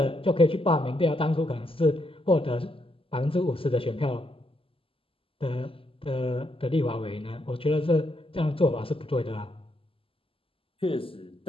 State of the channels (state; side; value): late; right; 0.26 ms